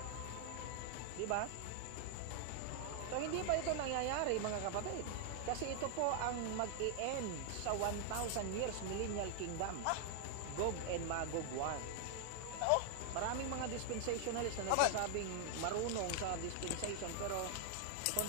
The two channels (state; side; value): different; both; correlation 0.00